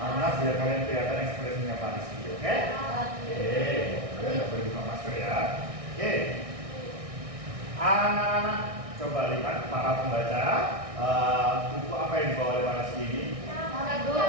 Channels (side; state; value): left; late; 1.6 ms